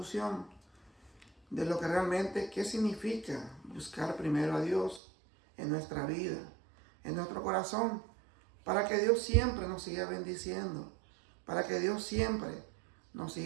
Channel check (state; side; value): drops out; left; at 5.0 s